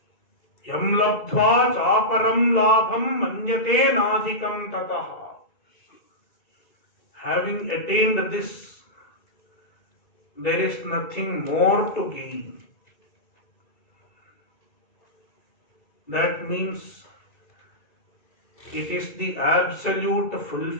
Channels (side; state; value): right; late; 2.7 ms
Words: Yam labdhva chaparam labham manyate nadhikam tataha. Having attained this, there is nothing more to gain. That means it is the absolute